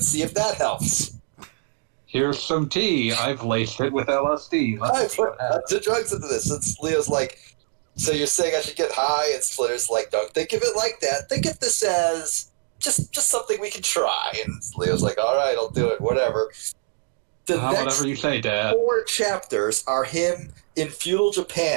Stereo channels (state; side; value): silent; left; digital silence